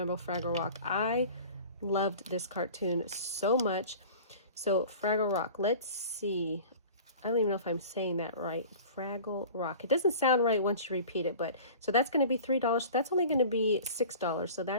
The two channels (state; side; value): inverted; both; correlation -0.41